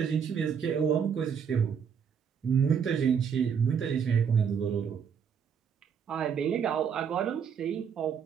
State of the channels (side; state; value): left; quieter; 7.2 dB